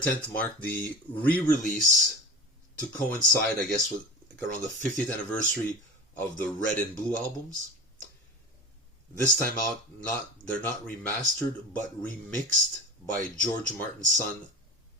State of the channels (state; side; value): normal; both; correlation 0.34